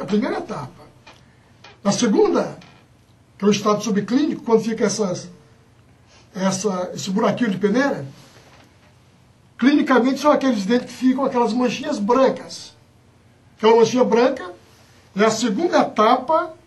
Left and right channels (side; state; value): both; identical; correlation 1.00